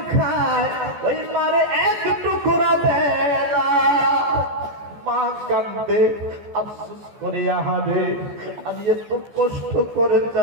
খায় ওই মারে এক টুকরা দেয় না। মা কান্দে, আফসোস করে, আহারে আমি এত কষ্ট করে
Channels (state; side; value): late; left; 14 ms